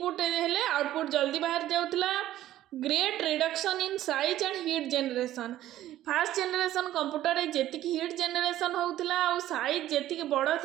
हेले आउटपुट जल्दी बाहर जाउतला great reduction in size and heat generation fast generation computer रे जेतिक हीट जनरेशन होउतला और साइज जेतिक बड़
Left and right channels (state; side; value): quieter; left; 13.6 dB